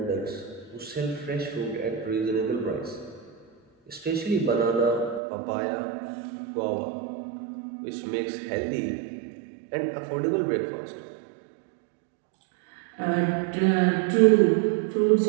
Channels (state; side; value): drops out; left; at 5.2 s